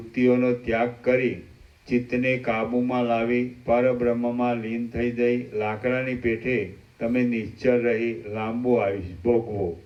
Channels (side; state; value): both; identical; correlation 1.00